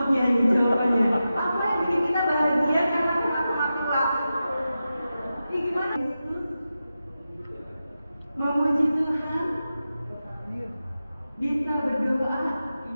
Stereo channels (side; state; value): both; inverted; correlation -0.92